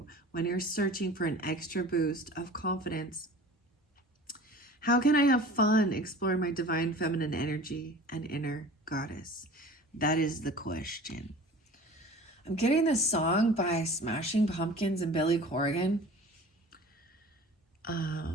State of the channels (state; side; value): normal; both; correlation 0.41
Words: when you're searching for an extra boost of confidence. How can I have fun exploring my divine feminine energy and inner goddess? That is the question. I'm getting this song by Smashing Pumpkins and Billy Corgan.